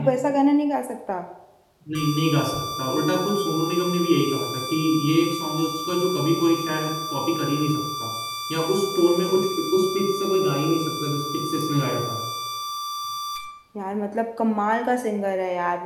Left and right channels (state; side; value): identical; both; correlation 1.00